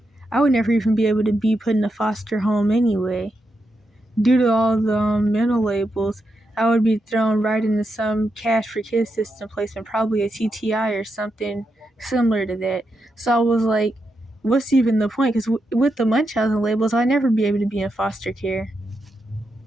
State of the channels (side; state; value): both; normal; correlation 0.85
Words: I would never even be able to be put in a foster home anyway. Due to all the mental labels, I would be thrown right into some cash for kids system placement, probably a TTI or something similar to that. So I was like, what's even the point? Because with the Munchausen labels, I'd never be able to be in foster care.